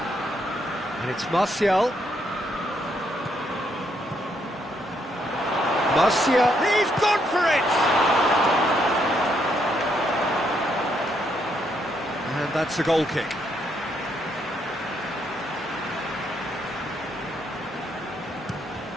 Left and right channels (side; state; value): both; normal; correlation 0.75